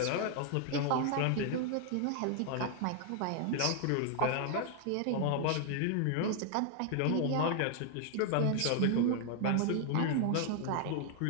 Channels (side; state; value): both; different; correlation 0.00